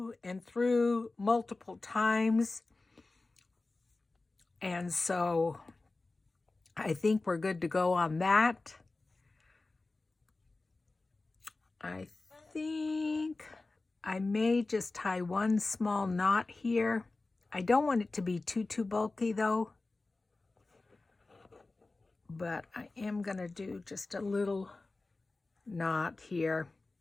and through multiple times, and so I think we're good to go on that. I think I may just tie one small knot here. I don't want it to be too bulky though, but I am gonna do just a little knot here.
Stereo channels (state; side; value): quieter; right; 3.4 dB